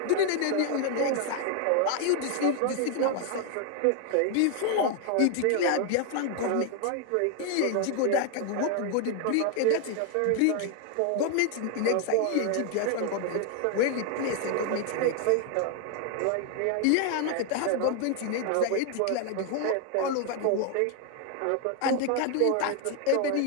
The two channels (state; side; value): different; both; correlation 0.00